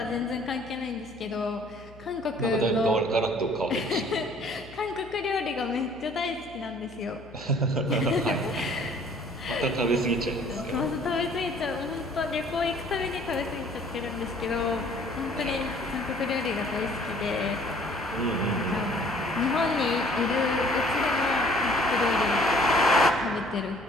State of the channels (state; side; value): noise; left; hum, 21 dB below the sound